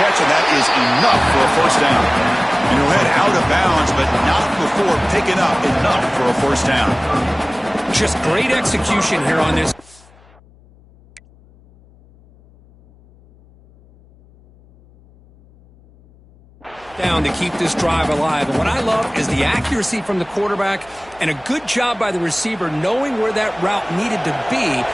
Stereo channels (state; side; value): noise; left; hum, 28 dB below the sound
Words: catch, and that is enough for a first down. And he'll head out of bounds, but not before picking up enough for a first down. Just great execution here on this. Down to keep this drive alive. And what I love is the accuracy from the quarterback and a good job by the receiver knowing where that route needed to